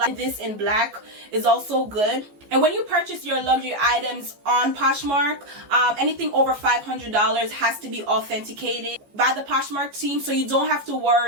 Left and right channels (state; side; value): late; left; 14 ms